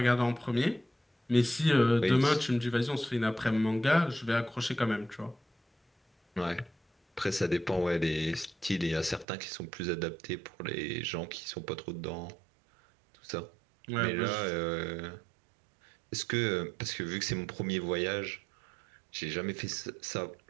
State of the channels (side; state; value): left; drops out; at 9.2 s